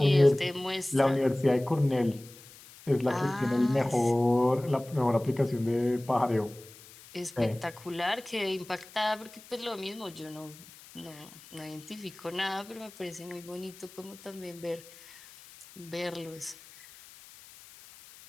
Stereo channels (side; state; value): left; noise; hiss, 20 dB below the sound